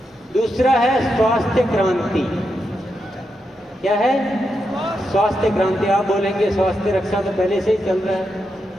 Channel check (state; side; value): normal; both; correlation 0.85